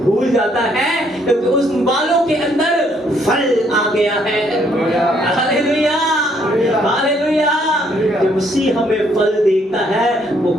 जाता है, क्योंकि उस बालों के अंदर फल आ गया है। Hallelujah, hallelujah. जब मसीह हमें फल देता है, वो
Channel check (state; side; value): normal; both; correlation 0.68